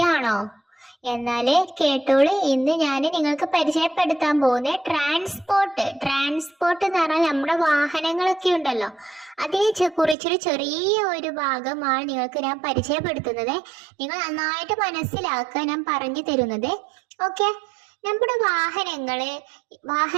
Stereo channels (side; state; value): left; drops out; at 10.2 s